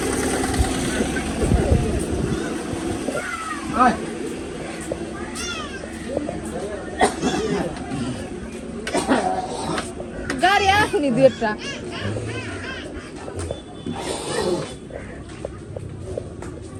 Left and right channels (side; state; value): both; identical; correlation 1.00